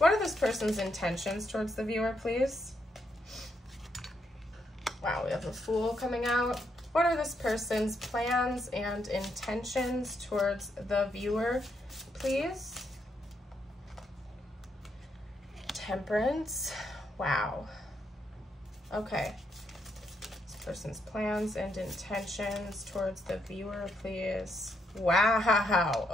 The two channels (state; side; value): normal; both; correlation 0.78